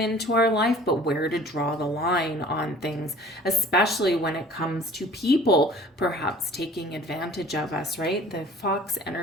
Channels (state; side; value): normal; both; correlation 0.49